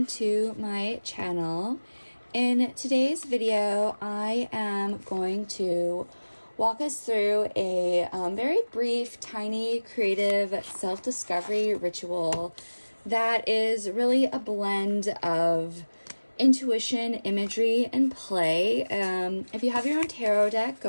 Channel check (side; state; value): both; inverted; correlation -1.00